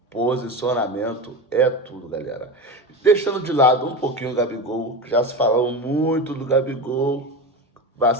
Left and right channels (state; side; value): normal; both; correlation 0.23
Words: posicionamento é tudo, galera. Deixando de lado um pouquinho o Gabigol, que já se falou muito do Gabigol,